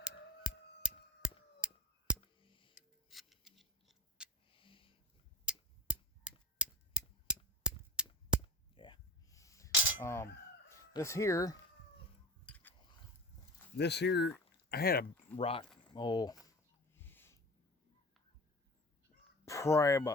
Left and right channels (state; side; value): normal; both; correlation 0.36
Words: Yeah. This here, I had a rock, probably